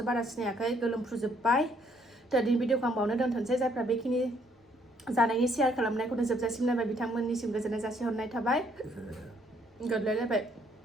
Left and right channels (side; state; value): both; normal; correlation 0.67